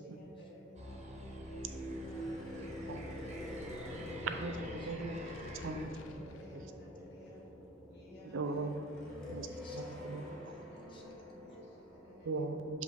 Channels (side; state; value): both; normal; correlation 0.40